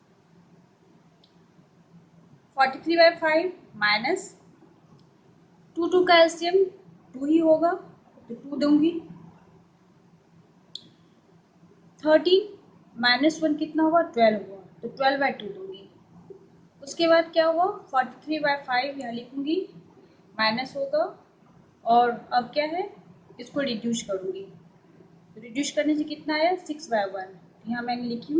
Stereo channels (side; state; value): both; identical; correlation 1.00